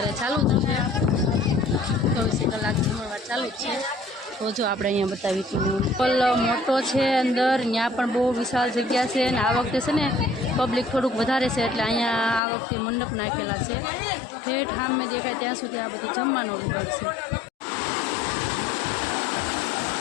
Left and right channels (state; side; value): drops out; right; at 12.4 s